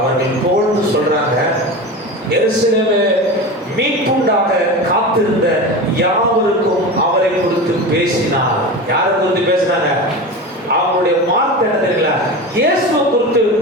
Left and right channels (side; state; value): both; normal; correlation 0.27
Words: போல்னு சொல்றாங்க, எருசலேமே மீட்புண்டாக காத்திருந்த யாவருக்கும் அவரை குறித்து பேசினார். யாரை குறித்து பேசினாங்க? அவங்களுடைய வார்த்தை என்ன தெரியல, இயேசுவை குறித்து